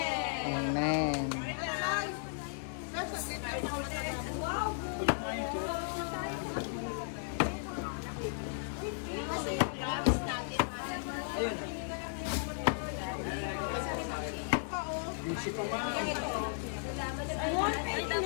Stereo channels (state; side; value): silent; right; digital silence